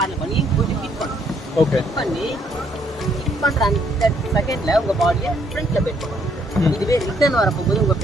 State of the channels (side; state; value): both; normal; correlation 0.68